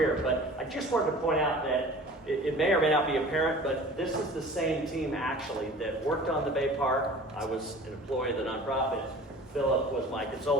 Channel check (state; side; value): normal; both; correlation 0.43